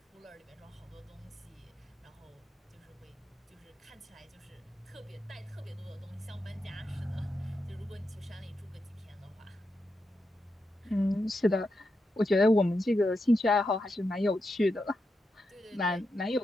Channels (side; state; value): both; normal; correlation 0.86